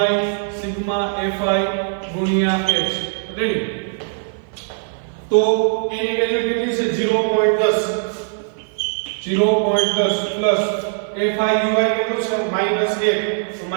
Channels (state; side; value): silent; left; 56 dB below the other